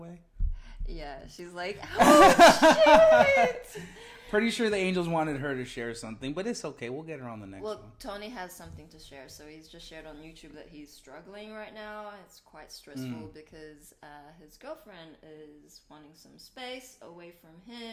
Yeah, she's like, oh, shit. Pretty sure the angels wanted her to share something, but it's okay. We'll get her on the next one. Well, Tony has something to share. So he's just shared on YouTube that he's struggling right now. It's quite stressful because his girlfriend is wanting some space away from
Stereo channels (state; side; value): identical; both; correlation 1.00